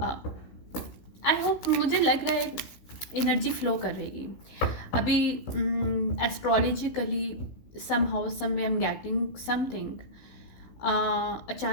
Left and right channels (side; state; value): right; late; 16 ms